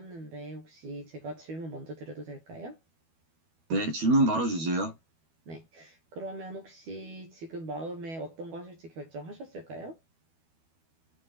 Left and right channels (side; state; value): left; late; 12 ms